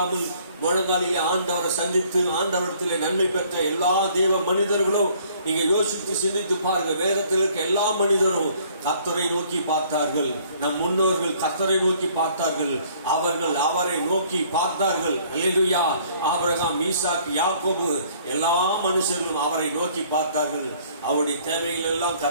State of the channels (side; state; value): both; inverted; correlation -0.59